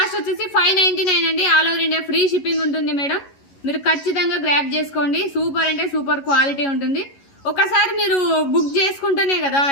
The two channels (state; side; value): late; right; 11 ms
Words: వచ్చేసి 599 అండి. All over India free shipping ఉంటుంది మేడం. మీరు ఖచ్చితంగా గ్రాప్ చేసుకోండి. సూపర్ అంటే సూపర్ క్వాలిటీ ఉంటుంది. ఒకసారి మీరు బుక్ చేసుకుంటేనే కదా